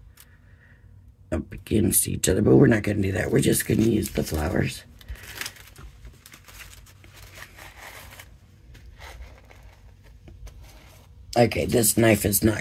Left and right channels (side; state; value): both; identical; correlation 1.00